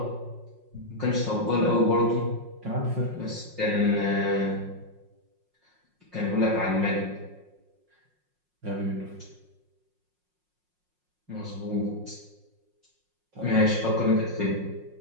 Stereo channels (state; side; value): late; left; 5.5 ms